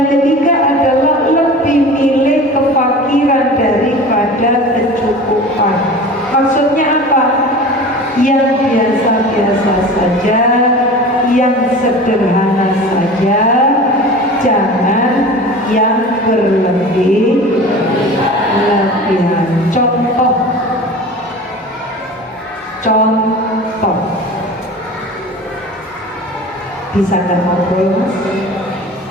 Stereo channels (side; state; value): both; normal; correlation 0.37